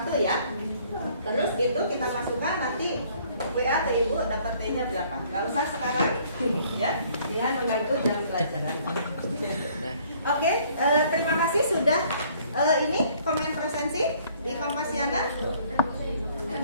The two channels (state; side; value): inverted; both; correlation -0.60